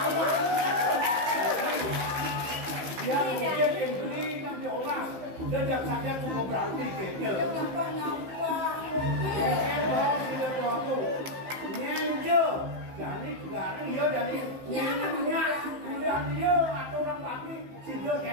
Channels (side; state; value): left; late; 15 ms